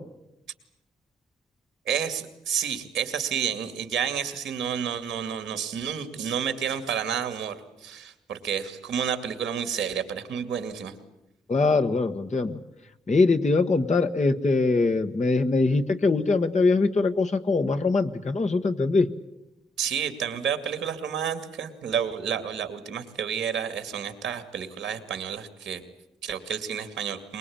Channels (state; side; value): normal; both; correlation 0.69